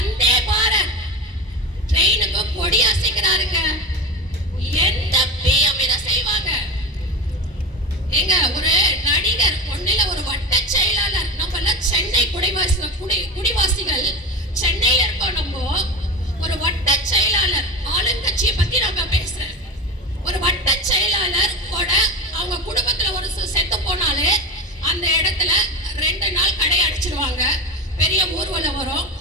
பாரத் ட்ரெயினுக்கு கொடி அசைக்கிறாருங்க. எந்த பிஎம் இதை செய்வாங்க? எங்க ஒரு நடிகர் ஒன்னில ஒரு வட்ட செயலாளர். நம்ம எல்லாம் சென்னை குடிவாசிகள் சென்னையில இருக்கோம். நம்ம ஒரு வட்ட செயலாளர், ஆளுங்கட்சியை பத்தி நம்ம பேசுறேன். ஒரு வட்ட செயலாளர் கூட அவங்க குடும்பத்துல ஒரு செத்து போனாலே அந்த இடத்துல 2 நாள் கடை அடிச்சிருவாங்க. பெரிய ஊர்வலம் வரும்,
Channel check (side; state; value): both; normal; correlation 0.25